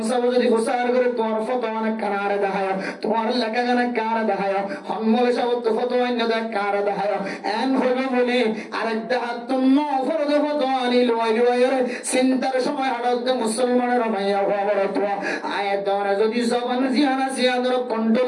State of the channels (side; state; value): both; identical; correlation 1.00